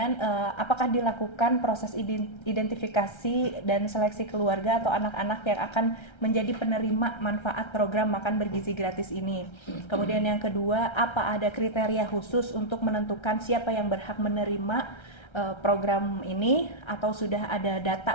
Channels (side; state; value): right; late; 1.3 ms